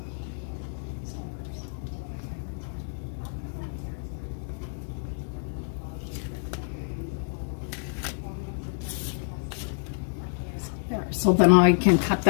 There, so then I can cut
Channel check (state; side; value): silent; right; digital silence